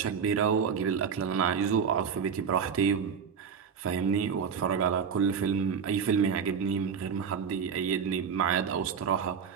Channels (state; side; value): quieter; left; 6.8 dB